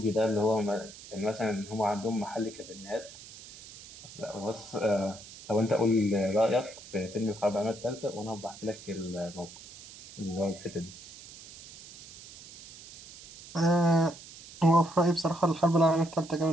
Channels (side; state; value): right; noise; hiss, 17 dB below the sound